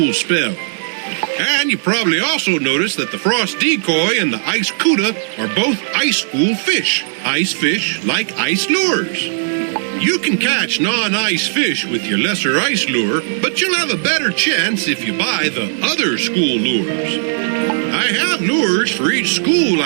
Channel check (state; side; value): silent; left; digital silence